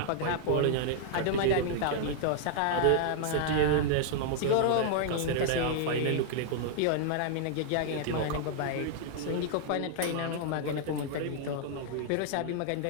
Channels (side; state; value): both; different; correlation -0.01